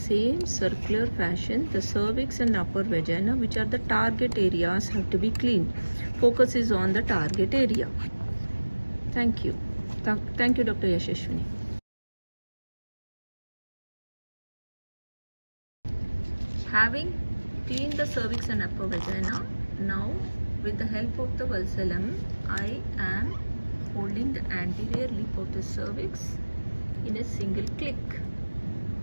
circular fashion, the cervix and upper vagina, which are the target areas, have to be cleaned. Focus is on the target area. Thank you. Thank you, Dr. Yashashwini. Having cleaned the cervix and upper vagina, now with the help of the valsalem, I am holding the anterior lip of the cervix in a single click.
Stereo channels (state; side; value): inverted; both; correlation -1.00